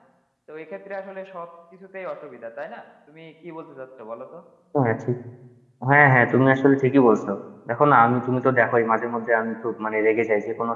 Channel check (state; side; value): identical; both; correlation 1.00